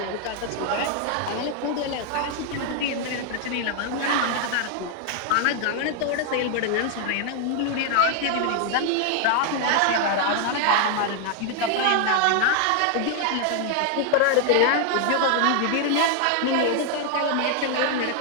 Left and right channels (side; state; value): both; different; correlation 0.00